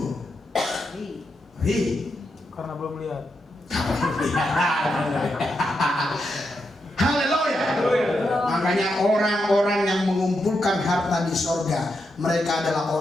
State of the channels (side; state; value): both; normal; correlation 0.84